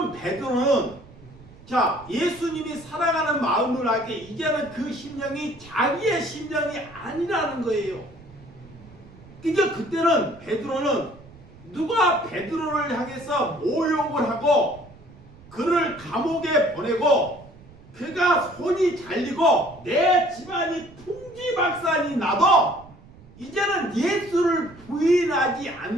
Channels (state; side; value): noise; right; rumble, 22 dB below the sound